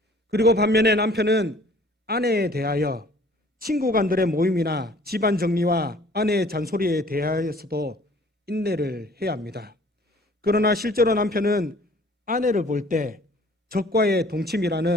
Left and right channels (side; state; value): both; normal; correlation 0.53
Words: 그리고 반면에 남편은 아내에 대하여 친구간들의 모임이나 집안 정리와 아내의 잔소리에 대하여서도 인내를 해야 합니다. 그러나 실제로 남편은 아내를 볼 때 적과의